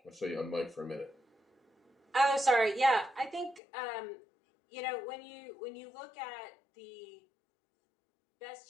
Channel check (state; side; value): drops out; right; at 3.6 s